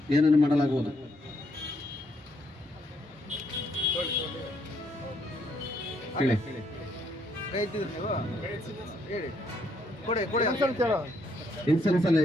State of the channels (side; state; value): both; normal; correlation 0.73